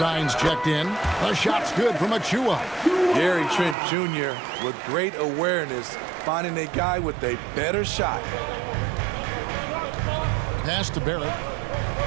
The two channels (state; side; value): drops out; left; at 3.8 s